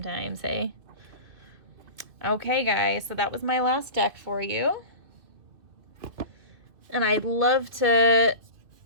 hey? Okay, guys, so that was my last deck for you. And I'd love to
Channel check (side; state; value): left; late; 2.3 ms